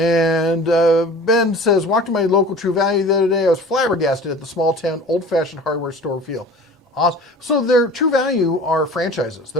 Ben says, walked to my local True Value the other day. I was flabbergasted at the small town old-fashioned hardware store feel. Awesome. So their True Value are franchises.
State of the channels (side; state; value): both; normal; correlation 0.41